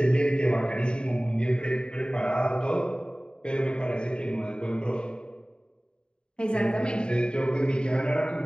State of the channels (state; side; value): late; right; 0.050 ms